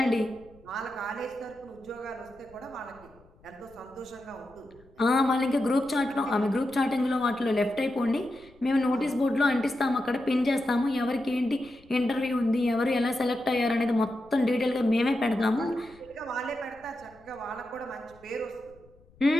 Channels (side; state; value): left; noise; rumble, 27 dB below the sound